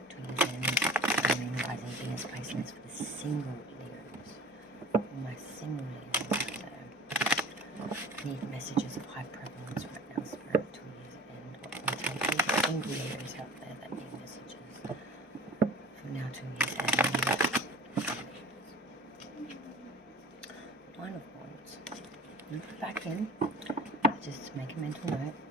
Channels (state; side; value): normal; both; correlation 0.41